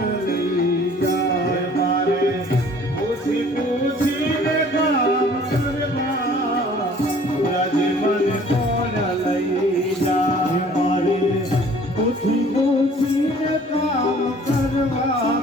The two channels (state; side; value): normal; both; correlation 0.53